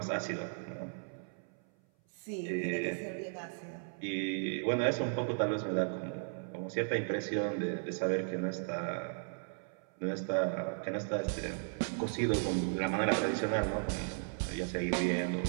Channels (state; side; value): silent; left; 54 dB below the other